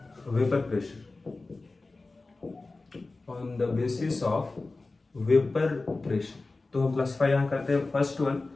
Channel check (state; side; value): quieter; right; 3.4 dB